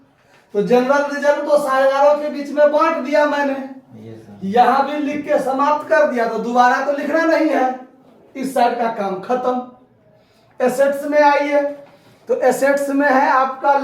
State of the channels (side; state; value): both; identical; correlation 1.00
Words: तो जनरल रिजर्व तो साझेदारों के बीच में बांट दिया मैंने, यहां भी लिख के समाप्त कर दिया, तो दोबारा तो लिखना नहीं है, इस साइड का काम खत्म। एसेट्स में आइए, तो एसेट्स में है आपका